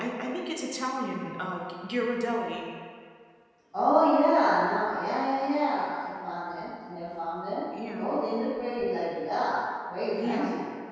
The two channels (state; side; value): identical; both; correlation 1.00